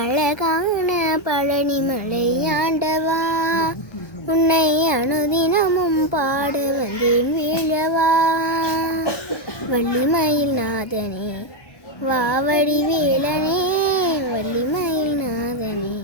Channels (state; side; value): late; right; 1.3 ms